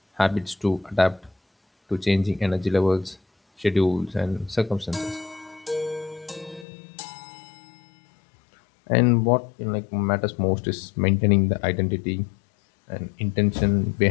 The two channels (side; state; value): right; drops out; at 6.7 s